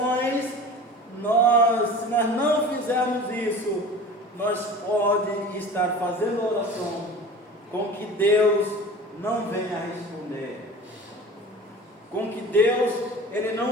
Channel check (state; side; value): normal; both; correlation 0.38